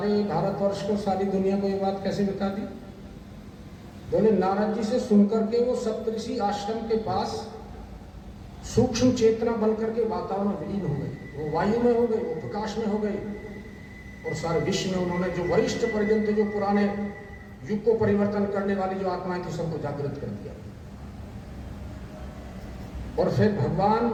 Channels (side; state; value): both; identical; correlation 1.00